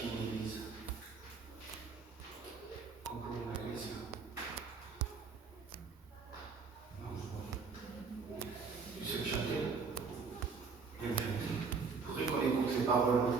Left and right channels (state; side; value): quieter; left; 5.0 dB